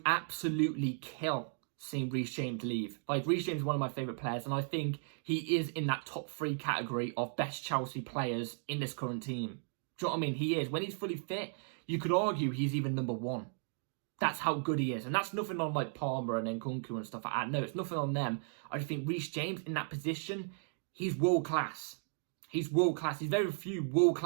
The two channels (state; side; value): silent; left; 54 dB below the other